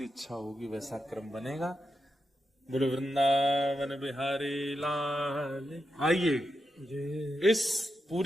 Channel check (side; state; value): both; normal; correlation 0.87